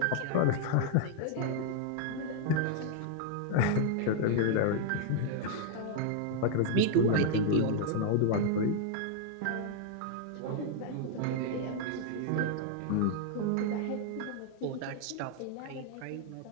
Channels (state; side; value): different; both; correlation 0.00